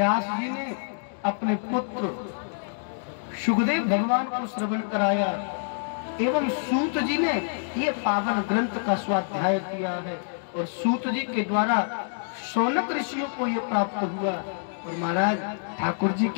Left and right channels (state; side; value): silent; right; digital silence